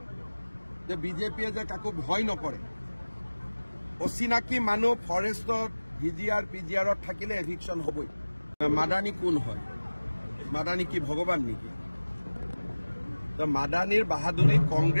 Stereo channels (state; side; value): inverted; both; correlation -1.00